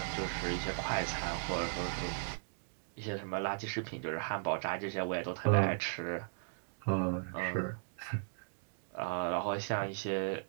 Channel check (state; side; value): silent; left; digital silence